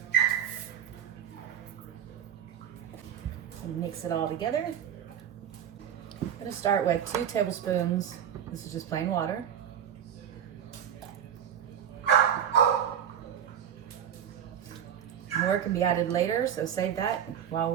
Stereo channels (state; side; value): quieter; left; 9.1 dB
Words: And mix it all together. I'm going to start with 2 tablespoons. This is just plain water. More can be added later, so save that while